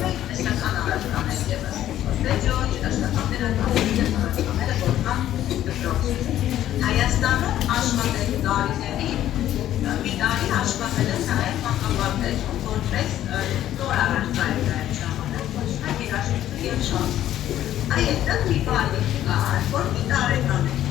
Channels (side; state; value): right; quieter; 12.3 dB